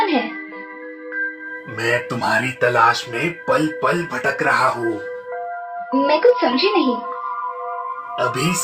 है? मैं तुम्हारी तलाश में पल पल भटक रहा हूँ। मैं कुछ समझी नहीं। अभी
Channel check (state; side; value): identical; both; correlation 1.00